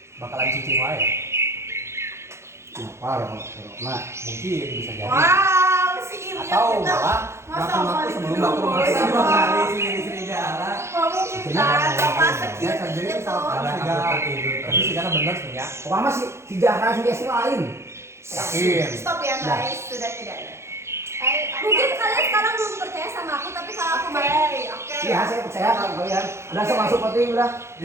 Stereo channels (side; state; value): left; late; 0.13 ms